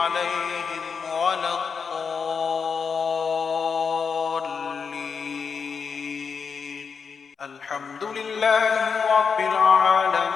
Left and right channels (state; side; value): quieter; right; 5.8 dB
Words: ولا الضالين. الحمد لله رب